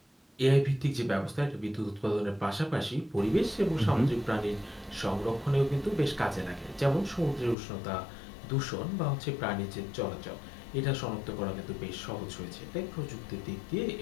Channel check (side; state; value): right; drops out; at 7.6 s